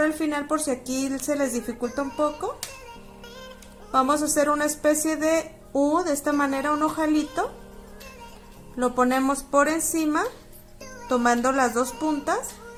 al final por si aquí se les dificulta un poco. Vamos a hacer una especie de U, de esta manera, un ojalito. Lo ponemos por encima, tomando las dos puntas.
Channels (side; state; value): both; identical; correlation 1.00